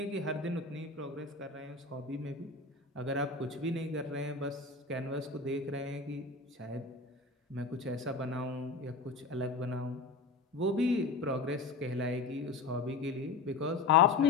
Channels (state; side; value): quieter; right; 3.9 dB